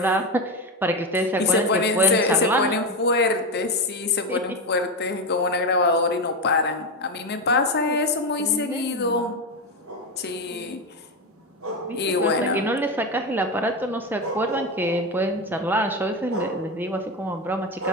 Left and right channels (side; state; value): both; normal; correlation 0.14